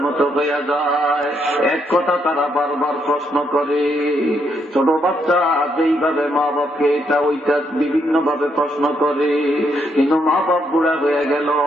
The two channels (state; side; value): normal; both; correlation 0.76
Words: মতো হয়ে যায়। এক কথা তারা বারবার প্রশ্ন করে। ছোট বাচ্চা যেইভাবে মা বাপকে এটা ওইটা বিভিন্ন ভাবে প্রশ্ন করে, কিন্তু মা বাপ বুড়া হয়ে গেল,